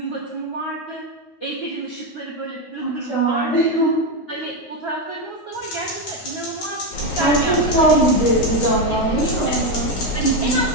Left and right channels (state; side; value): late; right; 9.6 ms